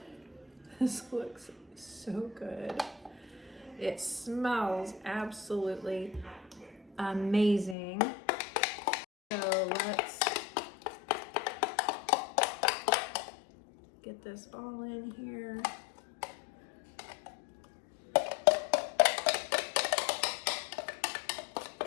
This looks so good. It smells absolutely amazing. So let's get this all in here.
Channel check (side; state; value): right; drops out; at 7.8 s